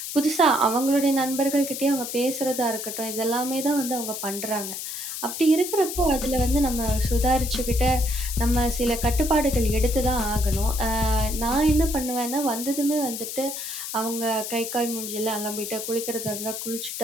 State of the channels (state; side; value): noise; left; hiss, 6 dB below the sound